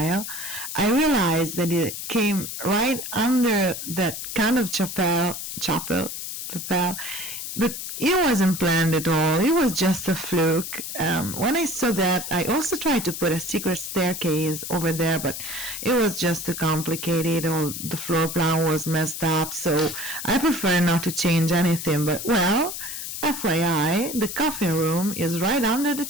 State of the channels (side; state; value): left; noise; hiss, 7 dB below the sound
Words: I realized that it came right under that kind of chapel, but it wasn't planned at all. It was just a fluke. When I saw that, I also tried to put a secret staircase over there, but it was just too complicated. All the floor plan was messed up, so I prefer not to change anything. But, well, FYI, the coffee room is right under the